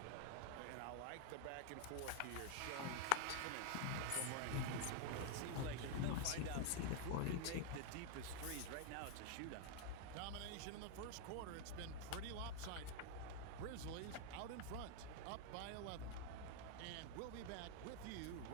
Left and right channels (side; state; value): both; different; correlation 0.00